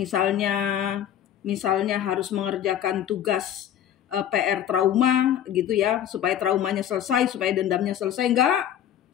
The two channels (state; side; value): quieter; right; 10.4 dB